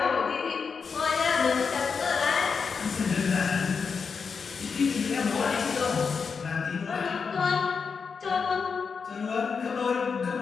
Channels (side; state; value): right; quieter; 5.6 dB